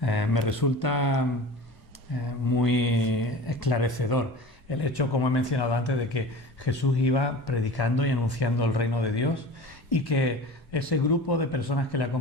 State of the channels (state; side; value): normal; both; correlation 0.36